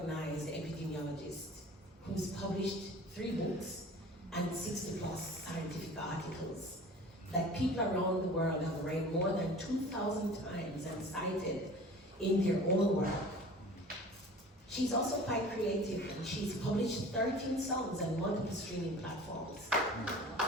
epidemiologist who's published 3 books and 60 plus scientific articles that people around the world have read more than 2,000 times and cited in their own work. She's also quite creative, and she's published 13 songs and multiple streaming platforms.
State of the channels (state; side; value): normal; both; correlation 0.42